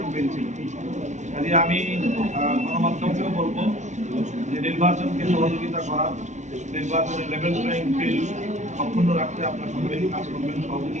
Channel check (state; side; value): late; left; 0.34 ms